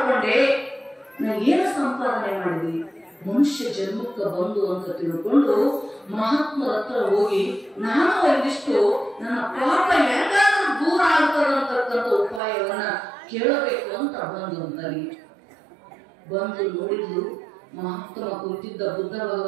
ನಾ ಏನು ಸಂಪಾದನೆ ಮಾಡಿದೆ? ಮನುಷ್ಯ ಜನ್ಮಕ್ಕೆ ಬಂದು ಅಂತ ತಿಳ್ಕೊಂಡು ಮಹಾತ್ಮರ ಹತ್ರ ಹೋಗಿ ನಾನು ಒಂದಿಷ್ಟು ನನ್ನ ಪಾಪ ಹೆಂಗಾದ್ರೂ ದೂರ ಆಗ್ತದಂತಕ್ಕಂಥ ಉಪಾಯವನ್ನ ಕೇಳಬೇಕು ಅಂತ ಬಂದು ನೋಡಿದ್ಲು. ಮಹಾತ್ಮ ಕುಂತಿದ್ದ ಬುದ್ಧ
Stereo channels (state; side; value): drops out; left; at 12.4 s